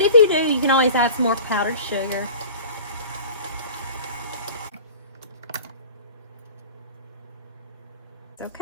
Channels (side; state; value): both; inverted; correlation -0.41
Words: if you do, you can always add some more powdered sugar.